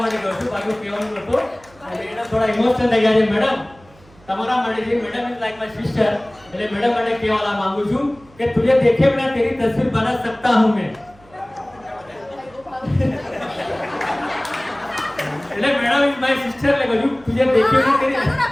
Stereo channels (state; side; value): noise; right; hum, 27 dB below the sound